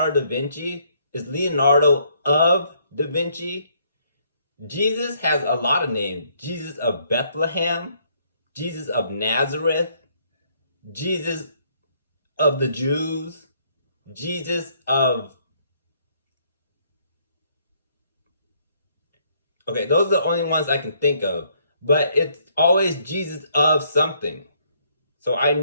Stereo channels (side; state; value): both; inverted; correlation -0.68